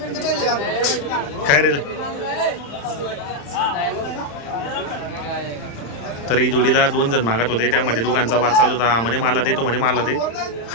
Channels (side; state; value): right; late; 35 ms